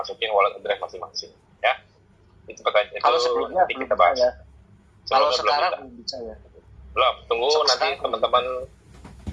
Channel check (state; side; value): identical; both; correlation 1.00